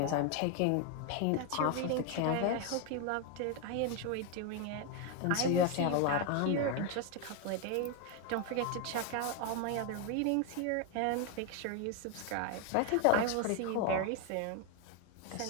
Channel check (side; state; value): both; different; correlation 0.01